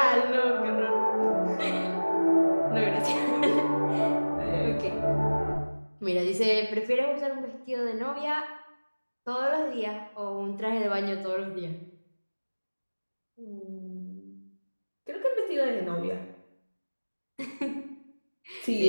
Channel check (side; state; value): both; inverted; correlation -1.00